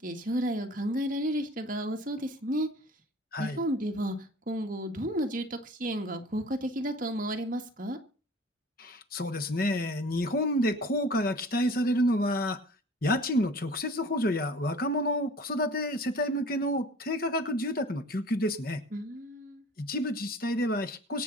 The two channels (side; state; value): both; normal; correlation 0.45